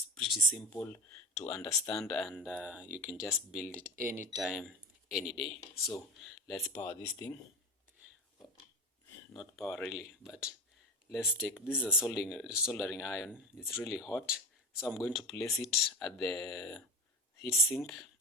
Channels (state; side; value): normal; both; correlation 0.25